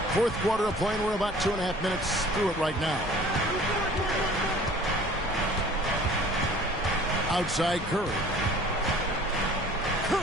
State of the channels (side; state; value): both; normal; correlation 0.49